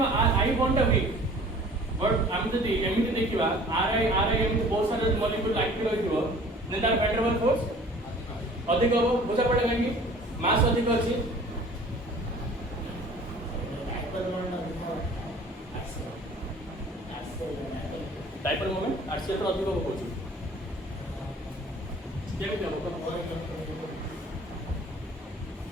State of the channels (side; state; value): both; normal; correlation 0.48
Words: are I bond weak but हम जदि एमिति देखिबा आर आई एमिति बहुत सारे मॉलिक्यूल एक्टिव होइथिबो ने तार वैन डर वाल्स फोर्स अधिक हो बुझा पड़ेगा कि मास अधिक अछि डाइपोल मोमेंट आरसीएल तो अधिक हो कोची केमि हो